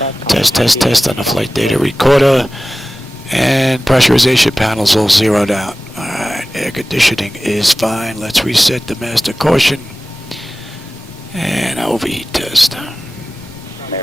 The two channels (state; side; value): normal; both; correlation 0.96